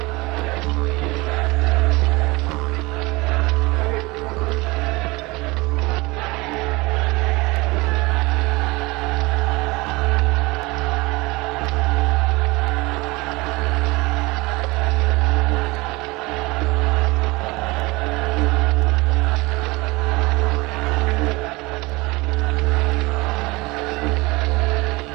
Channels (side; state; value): left; quieter; 23.5 dB